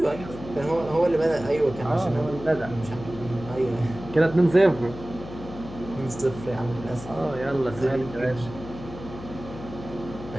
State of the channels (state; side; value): noise; left; hum, 13 dB below the sound